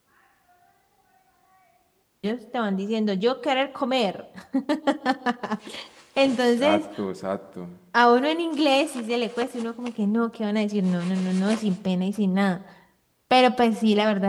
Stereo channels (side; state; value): both; identical; correlation 1.00